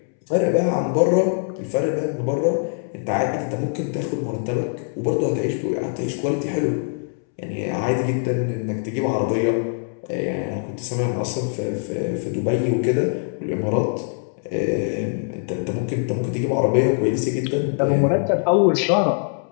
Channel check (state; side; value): silent; right; 64 dB below the other